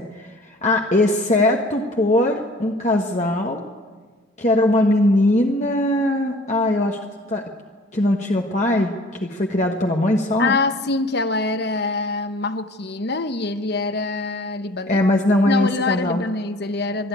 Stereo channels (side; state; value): both; normal; correlation 0.50